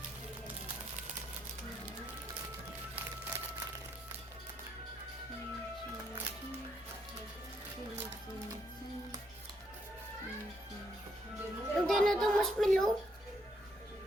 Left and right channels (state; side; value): normal; both; correlation 0.75